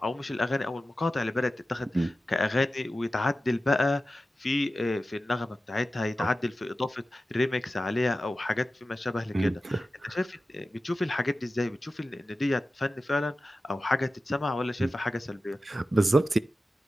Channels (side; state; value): both; normal; correlation 0.94